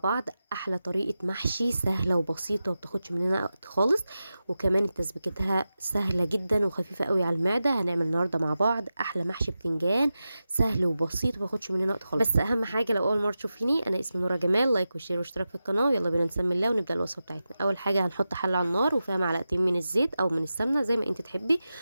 احلى طريقه محشي سهله وبسيطه وبتاخدش مننا وقت خالص، وكمان تسبيكتها سهله جدا وخفيفه قوي على المعده. هنعمل النهارده مع بعض احلى محشي بتنجان سهل وبسيط ومبياخدش مننا وقت خالص. بس اهم حاجه لو اول مره تشوفيني، انا اسمي نورة جمال. لايك وشير واشتراك في القناه، يلا بينا نسمي الله ونبدا الوصفه بتاعتنا. اول حاجه هنحط حله على النار وفيها معلقتين من الزيت او من السمنه زي ما انت تحبي،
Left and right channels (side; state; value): both; inverted; correlation -0.93